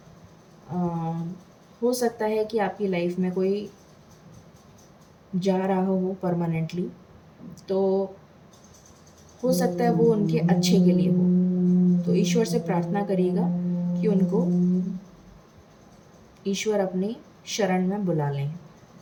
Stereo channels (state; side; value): identical; both; correlation 1.00